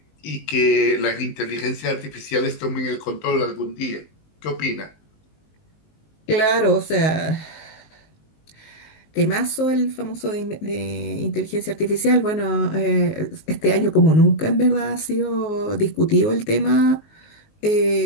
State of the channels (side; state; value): right; late; 19 ms